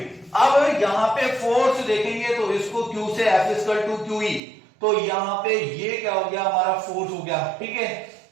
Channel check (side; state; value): left; drops out; at 4.4 s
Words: अब यहाँ पे फोर्स देखेंगे तो इसको क्यू से f equal to q e, तो यहाँ पे ये क्या हो गया, हमारा फोर्स हो गया, ठीक है,